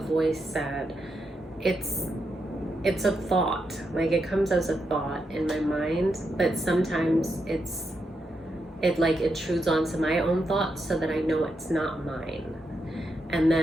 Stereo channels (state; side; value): normal; both; correlation 0.83